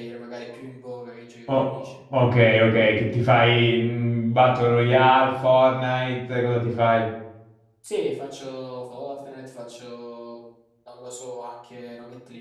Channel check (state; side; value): identical; both; correlation 1.00